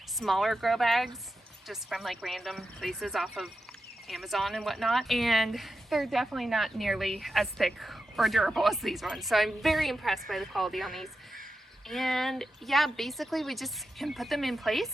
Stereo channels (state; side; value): normal; both; correlation 0.89